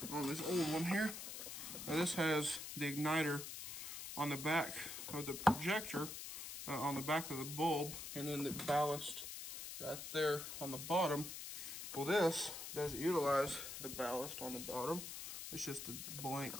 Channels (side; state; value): left; noise; hiss, 8 dB below the sound